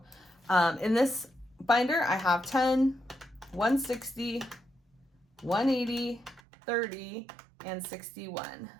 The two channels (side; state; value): left; drops out; at 6.4 s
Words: in this binder, I have 10, 160, 180, 30 and 61.